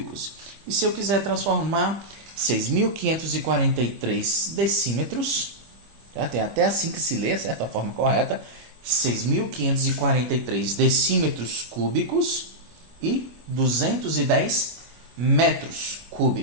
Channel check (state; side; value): late; left; 25 ms